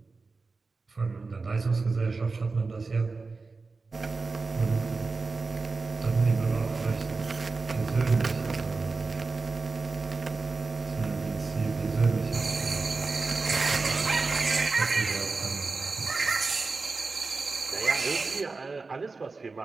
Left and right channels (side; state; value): left; quieter; 4.0 dB